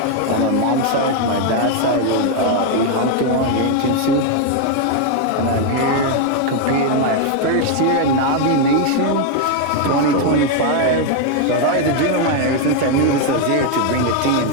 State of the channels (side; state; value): both; different; correlation 0.01